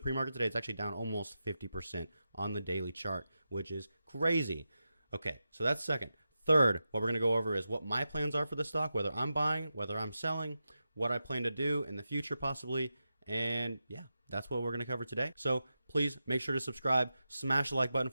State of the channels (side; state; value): both; inverted; correlation -0.90